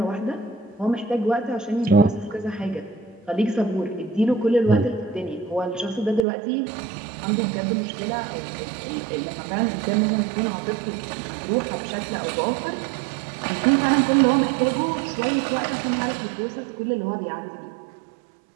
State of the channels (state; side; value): drops out; left; at 6.2 s